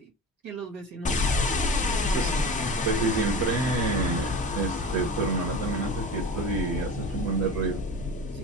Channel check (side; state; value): both; normal; correlation 0.32